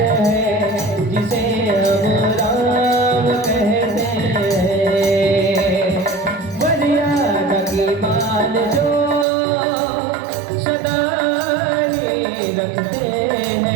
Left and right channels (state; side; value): drops out; left; at 9.2 s